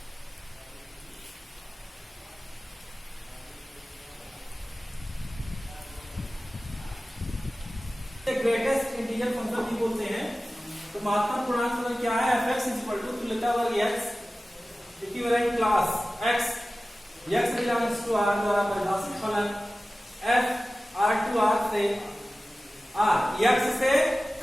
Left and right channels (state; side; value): normal; both; correlation 0.96